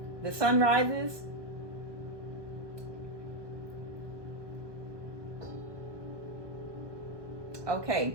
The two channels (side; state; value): left; late; 1.2 ms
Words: The sun rises. Okay.